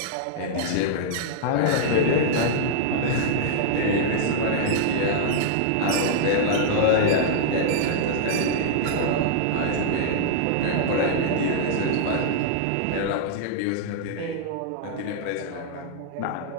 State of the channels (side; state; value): both; different; correlation -0.02